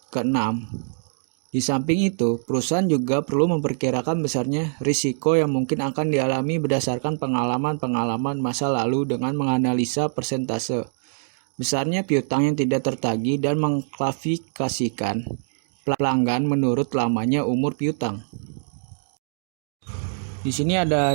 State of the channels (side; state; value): left; silent; digital silence